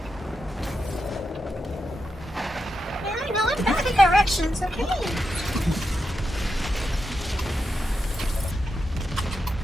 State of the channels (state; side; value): normal; both; correlation 0.87